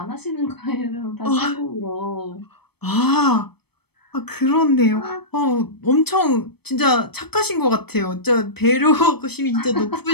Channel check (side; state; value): right; late; 0.97 ms